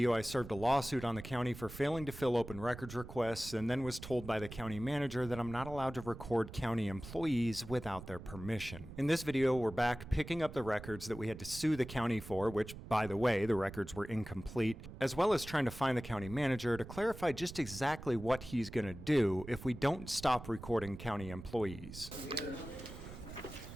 I served a lawsuit on the county for failing to fill open records requests, and then was told by the county manager that I'm not allowed to record county employees without their permission. In this video, we're back picking up the records that we had to sue the county for, which, by the way, the records were incomplete, as well as trying to find the county manager to clarify just exactly what he's going to do if we don't stop recording county employees.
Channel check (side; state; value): right; noise; rumble, 13 dB below the sound